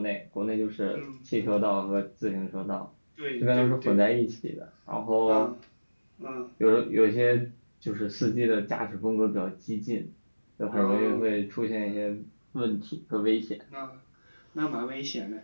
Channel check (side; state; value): both; inverted; correlation -1.00